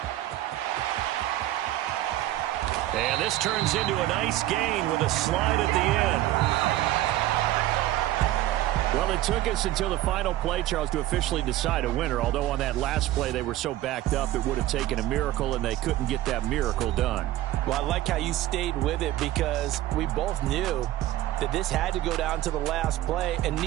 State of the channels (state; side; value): quieter; left; 14.8 dB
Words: And this turns into a nice gain with a slide at the end. Well, it took us until the final play, Charles, to officially decide a winner. Although on that last play they were so backed up, it would have taken a miracle, and they couldn't get that miracle done. Well, I like how you stayed with it because we both knew that this had to go down to the last play, and